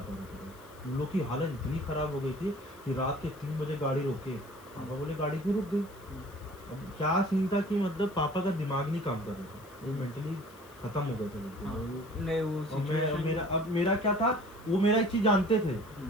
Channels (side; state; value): left; noise; hiss, 25 dB below the sound